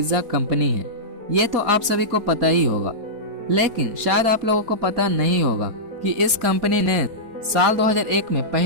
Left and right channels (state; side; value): late; left; 4.1 ms